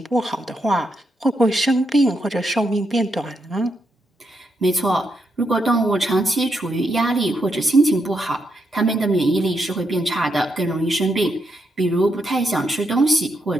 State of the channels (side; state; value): both; normal; correlation 0.81